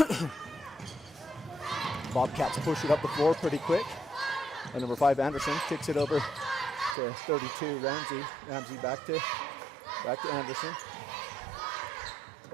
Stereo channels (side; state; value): left; drops out; at 7.0 s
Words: Bobcats push it up the floor pretty quick. And number 5, Anderson, kicks it over to 32, Ramsey. Ramsey back to Anderson.